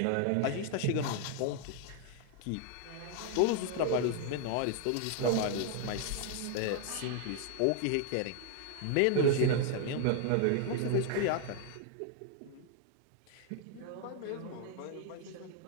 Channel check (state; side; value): different; both; correlation 0.00